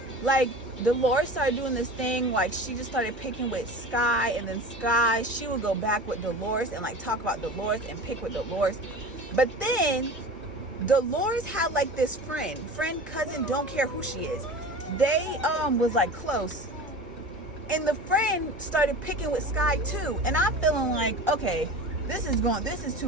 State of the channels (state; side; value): normal; both; correlation 0.35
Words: like, Dolores started doing this thing, like, she just started picking with Sky, and then Sky, she would go back with Dolores and, like, talk about Dolores and pick with Dolores. But then Dolores had, like, this friend, cousin, don't care who she is. They was like close, and the friend started picking with Sky too. And I'm feeling like, okay, this is